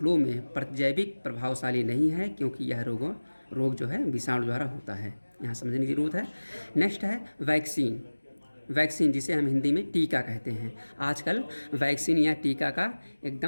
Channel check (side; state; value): both; inverted; correlation -1.00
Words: में प्रतिजैविक प्रभावशाली नहीं है क्योंकि यह रोग जो है विषाणु द्वारा होता है। यहाँ समझने की ज़रूरत है। नेक्स्ट है वैक्सीन, जिसे हम हिंदी में टीका कहते हैं। आजकल वैक्सीन या टीका का